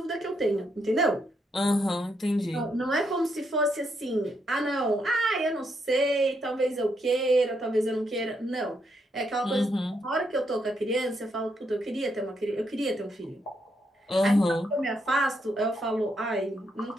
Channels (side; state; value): both; normal; correlation 0.78